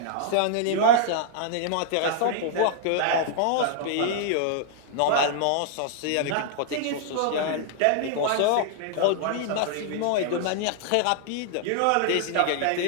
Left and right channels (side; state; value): both; different; correlation -0.01